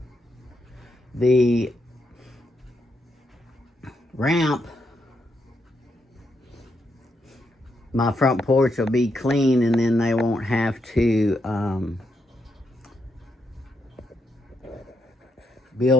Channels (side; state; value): both; normal; correlation 0.80